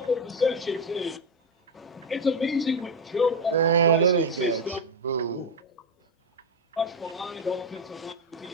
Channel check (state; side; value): normal; both; correlation 0.10